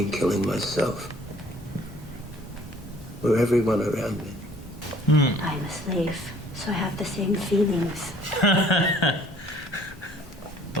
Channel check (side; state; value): both; normal; correlation 0.56